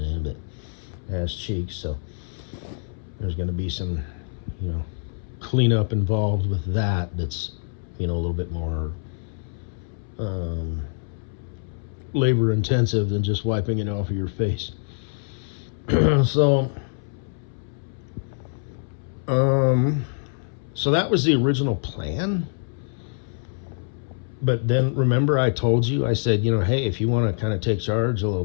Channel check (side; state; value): right; silent; 62 dB below the other